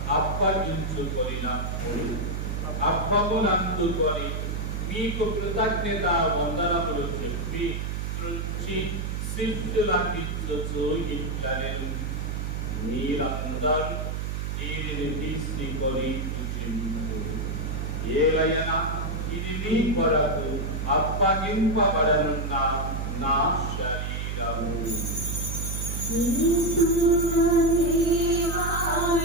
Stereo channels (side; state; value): right; noise; hum, 3 dB below the sound